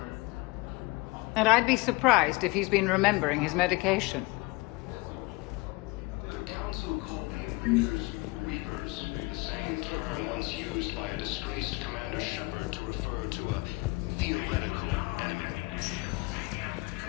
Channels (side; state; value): right; quieter; 24.5 dB